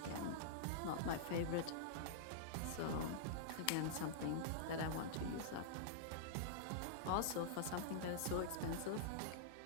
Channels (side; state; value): both; different; correlation -0.02